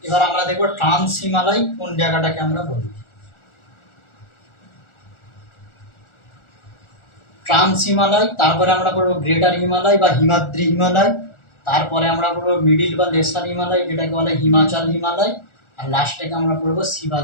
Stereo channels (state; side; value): late; right; 1.4 ms